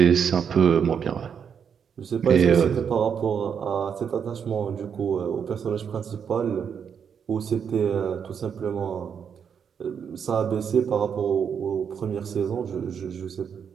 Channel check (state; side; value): quieter; left; 7.3 dB